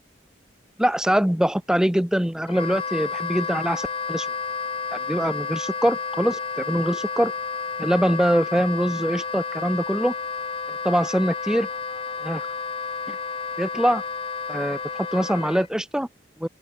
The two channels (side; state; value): both; normal; correlation 0.76